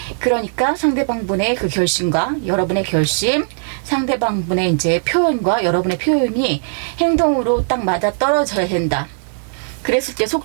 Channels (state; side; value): silent; left; digital silence